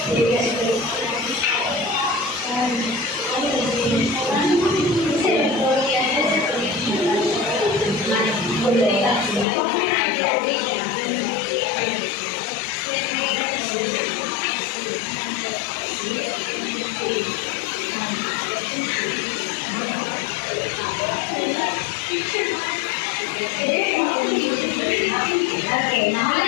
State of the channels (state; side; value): drops out; right; at 9.5 s